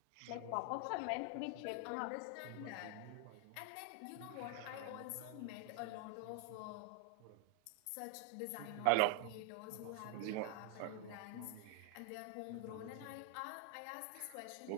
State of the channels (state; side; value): different; both; correlation 0.00